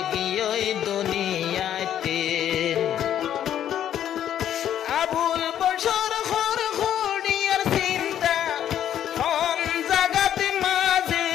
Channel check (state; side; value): quieter; right; 10.5 dB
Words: গিয়ে দুনিয়াতে আবুল বসর খর খড়িয়ার চিন্তা হন জাগাতে মাঝে